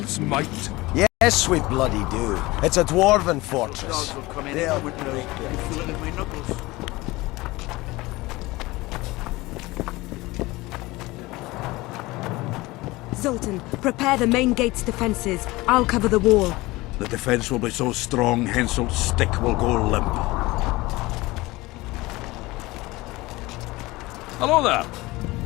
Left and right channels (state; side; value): quieter; right; 20.7 dB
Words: might. Yes, we bloody do. It's a dwarven fortress. Dogs will come in They'll with break and feel it in my knuckles. Zoltan, prepare the main gate's defenses. I'll cover the wall. The defense will be so strong, Henselt's stick will go limp. Hello there.